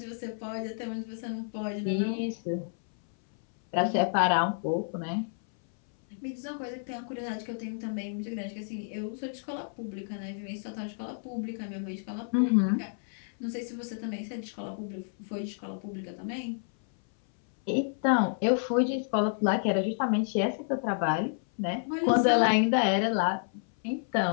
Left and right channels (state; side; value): silent; right; 58 dB below the other